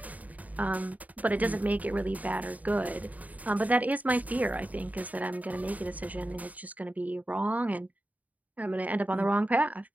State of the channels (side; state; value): left; late; 0.074 ms